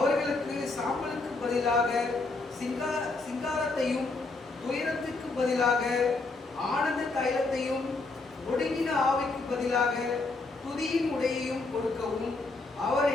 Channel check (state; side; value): quieter; right; 3.5 dB